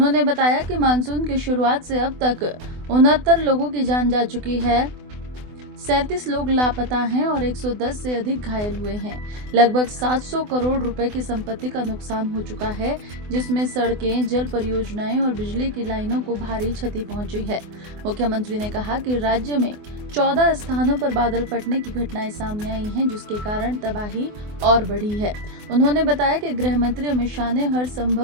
बताया कि मानसून की शुरुआत से अब तक 69 लोगों की जान जा चुकी है, 37 लोग लापता हैं और 110 से अधिक घायल हुए हैं। लगभग 700 करोड़ रुपए की संपत्ति का नुकसान हो चुका है, जिसमें सड़कें, जल परियोजनाएं और बिजली की लाइनों को भारी क्षति पहुंची है। मुख्यमंत्री ने कहा कि राज्य में 14 स्थानों पर बादल फटने की घटनाएं सामने आई हैं, जिसके कारण तबाही और बढ़ी है। उन्होंने बताया कि गृह मंत्री अमित शाह ने हर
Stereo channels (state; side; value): late; left; 24 ms